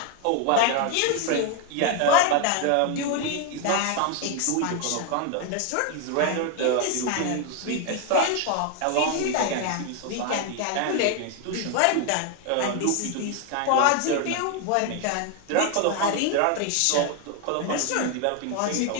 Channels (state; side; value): different; both; correlation 0.01